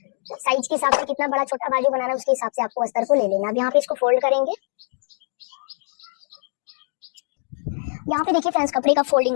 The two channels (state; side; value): silent; right; digital silence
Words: साइज के हिसाब से कितना बड़ा छोटा बाजू बनाना है उसके हिसाब से आपको अस्तर को ले लेना। अब यहाँ पे इसको फोल्ड करेंगे। यहाँ पे देखिए फ्रेंड्स, कपड़े का फोल्डिंग